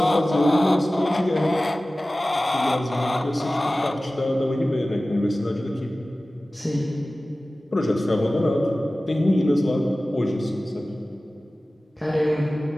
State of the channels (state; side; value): normal; both; correlation 0.97